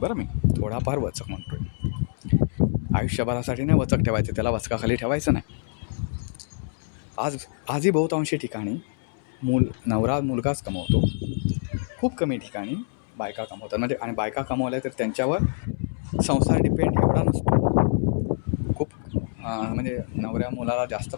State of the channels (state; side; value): silent; right; 61 dB below the other